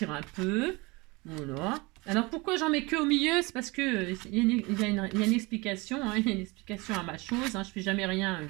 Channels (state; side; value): quieter; left; 25.1 dB